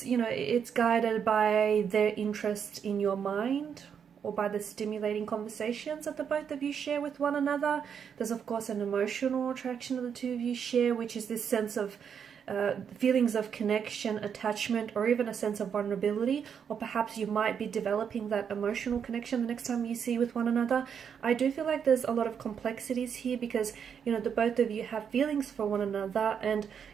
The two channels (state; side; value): quieter; left; 7.5 dB